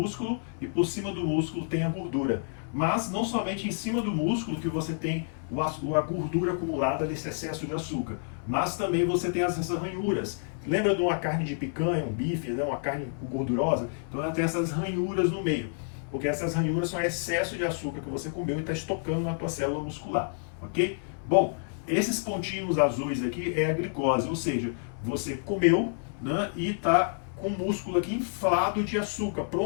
e por cima do músculo tem a gordura. Mas não somente em cima do músculo que você tem a gordura acumulada nesse excesso de açúcar, mas também você tem essas ranhuras. Lembra de uma carne de picanha, um bife, né, uma carne gordurosa? Então ela tem essas ranhuras no meio, porque essas ranhuras são excesso de açúcar que você comeu e está estocando na tua célula muscular, ok? Bom, esses pontinhos azuis aqui é a glicose, ou seja, você comeu, né, e está com o músculo aqui inflado de açúcar,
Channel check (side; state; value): right; silent; 59 dB below the other